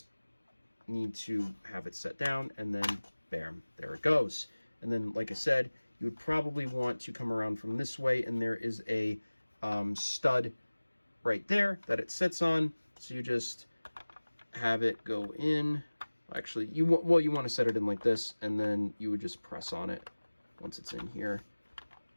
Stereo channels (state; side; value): inverted; both; correlation -1.00